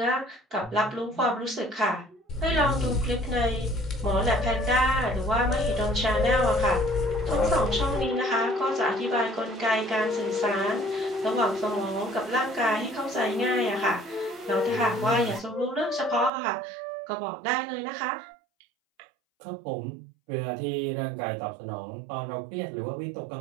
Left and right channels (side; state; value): left; drops out; at 16.3 s